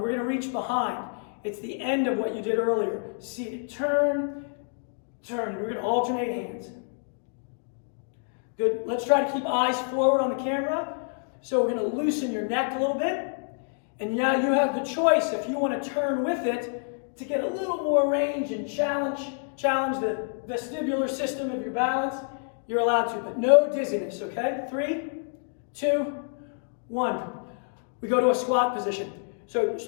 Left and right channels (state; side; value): silent; right; 60 dB below the other